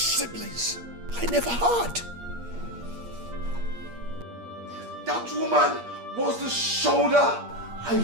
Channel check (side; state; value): left; late; 8.5 ms